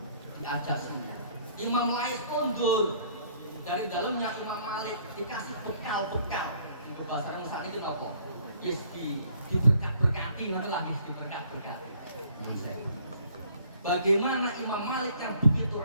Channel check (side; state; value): both; inverted; correlation -0.60